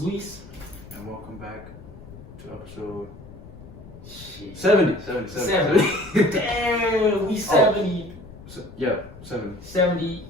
Luis. And welcome back to episode Shit. 70. 70. Damn, we 70. Yeah, 70. 70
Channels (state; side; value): noise; left; rumble, 17 dB below the sound